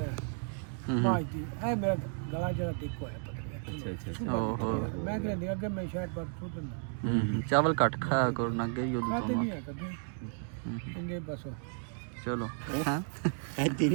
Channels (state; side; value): silent; left; 56 dB below the other